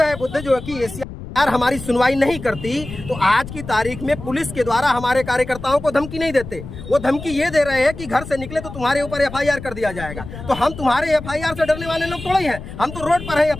है। बुद्ध जो है कि एशिया यार हमारी सुनवाई नहीं करती तो आज की तारीख में पुलिस के द्वारा हमारे कार्यकर्ताओं को धमकी नहीं देते। वो धमकी ये दे रहे हैं कि घर से निकले तो तुम्हारे ऊपर एफआईआर कर दिया जाएगा। तो हम तुम्हारे एफआईआर से डरने वाले लोग थोड़े ही हैं, हम तो रोड पर है,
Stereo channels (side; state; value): left; noise; rumble, 12 dB below the sound